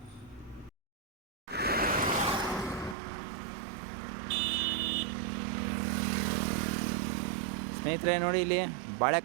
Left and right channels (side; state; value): left; drops out; at 3.0 s